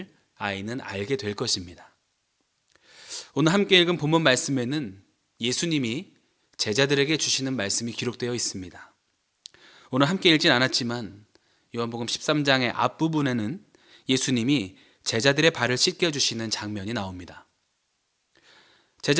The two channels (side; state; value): both; identical; correlation 1.00